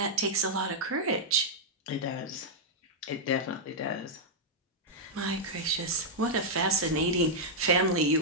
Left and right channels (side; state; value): both; normal; correlation -0.06